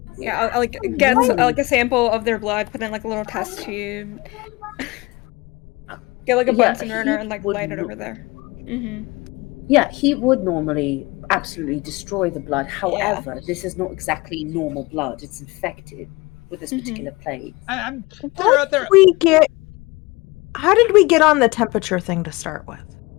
Yeah, I'll like get like a sample of their blood, put in like a little test tube, get like a Bunsen burner, and like light it over there. Yeah, heat would normally absolutely destroy the blood. However, this is not exactly normal blood. It's infected with this particular plague. And How did we get on the temperature thing to start with?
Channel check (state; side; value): quieter; right; 23.5 dB